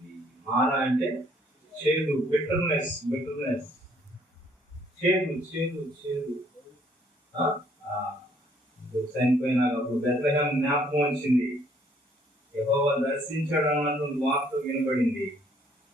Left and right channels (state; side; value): normal; both; correlation 0.64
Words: మారా అంటే చేదు, బిటర్నెస్, చేదు. చనిపోయినాక బెత్లెహేము జ్ఞాపకం వచ్చింది, యెహోవా దర్శించాడు అన్నటువంటి వార్త వినబడింది.